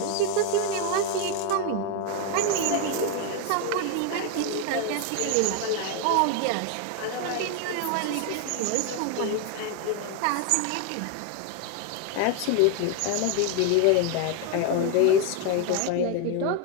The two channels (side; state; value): both; different; correlation 0.01